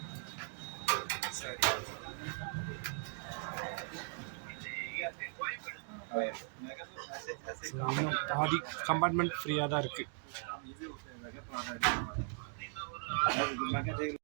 இன்னும் பாதி கம்பார்ட்மெண்ட் ஃப்ரீயாக தான் இருக்குது.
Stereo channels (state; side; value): silent; left; 52 dB below the other